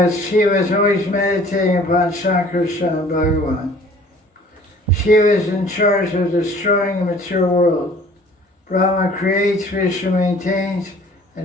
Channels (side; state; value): both; normal; correlation 0.52